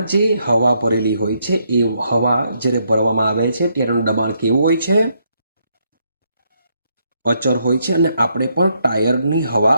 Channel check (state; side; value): inverted; both; correlation -0.76